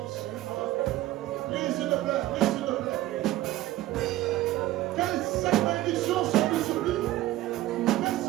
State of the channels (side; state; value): left; quieter; 15.7 dB